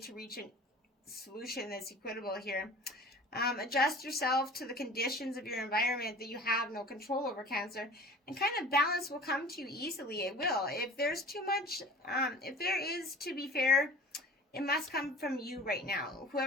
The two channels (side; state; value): both; normal; correlation 0.42